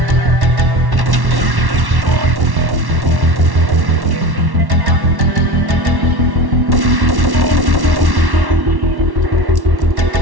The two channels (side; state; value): left; late; 1.1 ms